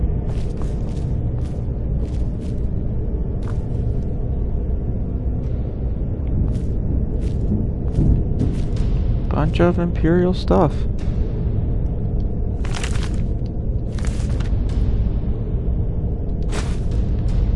bunch of Imperial stuff.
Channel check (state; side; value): identical; both; correlation 1.00